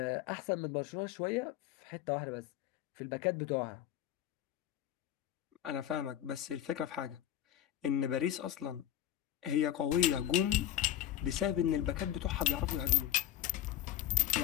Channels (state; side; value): quieter; right; 12.0 dB